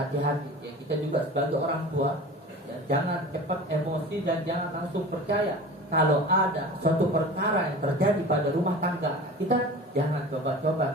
hati-hati ya, kita juga sebagai orang tua ya, jangan cepat emosi dan jangan langsung percaya kalau ada suatu perkara yang terjadi pada rumah tangga kita. Jangan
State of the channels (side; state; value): both; normal; correlation 0.37